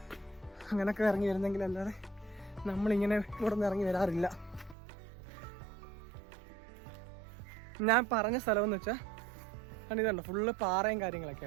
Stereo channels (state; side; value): drops out; left; at 4.8 s